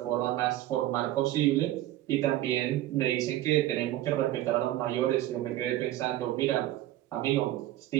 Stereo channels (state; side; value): quieter; left; 14.7 dB